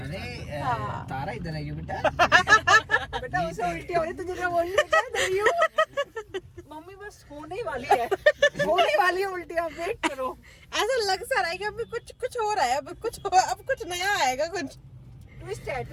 अरे तारा इधर है क्यों बेटा? बेटा उसे उल्टी हो रही, तुझे क्या बोल रही हूँ? मम्मी बस होने ही वाली है, होने वाली है उल्टी, आप वेट करो। ऐसा लग सा रहा है कि अभी कुछ हो रहा है, अब कुछ नया आएगा, कुछ ट्विस्ट है,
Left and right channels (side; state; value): both; identical; correlation 1.00